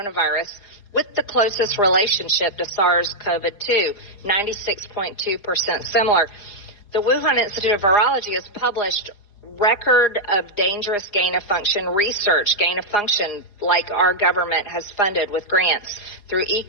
with the closest relationship to SARS-CoV-2, 96.2% similar. The Wuhan Institute of Virology has published record of dangerous gain-of-function research, gain-of-function like our government has funded with grants through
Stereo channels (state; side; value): late; right; 4.9 ms